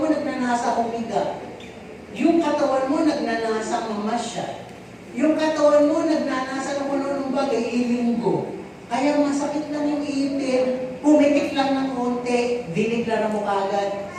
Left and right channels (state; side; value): identical; both; correlation 1.00